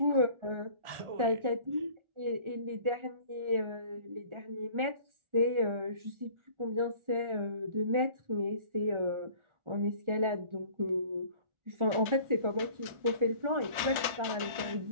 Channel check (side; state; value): left; late; 1.4 ms